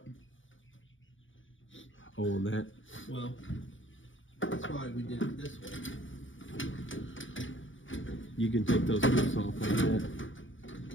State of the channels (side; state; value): right; late; 0.56 ms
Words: Oh, on that. Well, that's why we did it this way. You can take those hooks off like that.